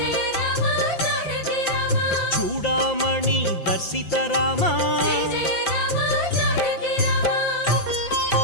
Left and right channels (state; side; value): late; right; 5.8 ms